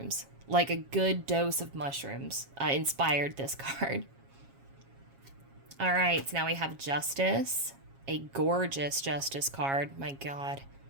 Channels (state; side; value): late; left; 7.3 ms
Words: Like a good dose of mushrooms inspired this card. All right, so now we have Justice, a gorgeous Justice card. My God.